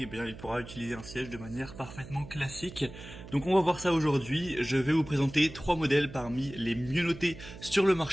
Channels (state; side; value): noise; right; hum, 15 dB below the sound